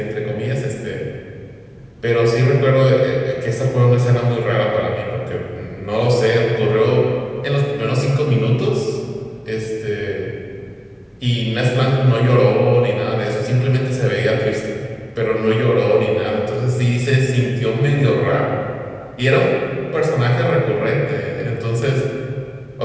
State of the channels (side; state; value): both; identical; correlation 1.00